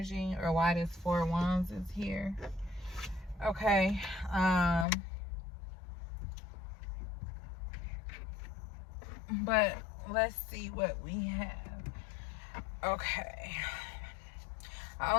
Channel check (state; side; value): drops out; right; at 4.9 s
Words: or why this Four of Wands is here. Okay, but let's see what we have. Okay, I